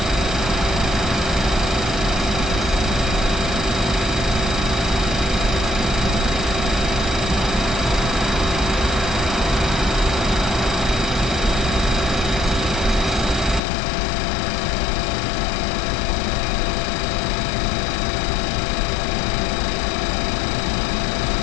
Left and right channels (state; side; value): drops out; right; at 13.6 s